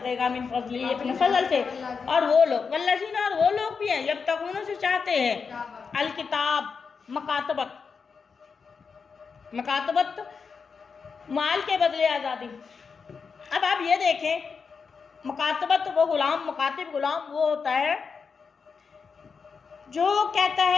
मिन फजली, अपने फजल से। और वो लोग वल्लज़ीना, और वो लोग भी हैं जब तक उन्होंने चाहते हैं अल किताब, मकातबत, मकातबत माल के बदले आज़ादी। अब आप ये देखें, मकातबत वो गुलाम, मकातिब गुलाम वो होता है जो कहता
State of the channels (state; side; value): quieter; right; 5.5 dB